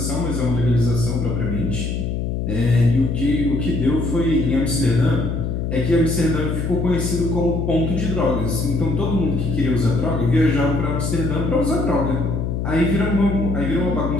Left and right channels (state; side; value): noise; left; hum, 1 dB below the sound